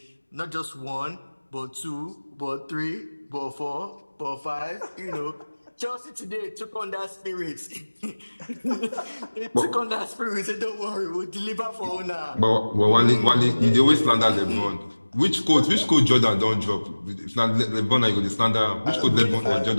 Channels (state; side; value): inverted; both; correlation -1.00